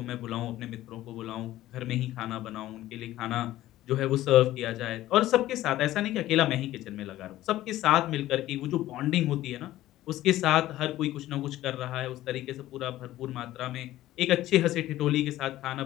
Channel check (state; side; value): quieter; right; 14.9 dB